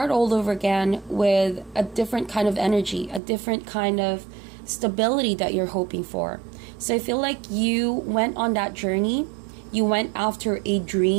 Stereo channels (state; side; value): drops out; left; at 3.2 s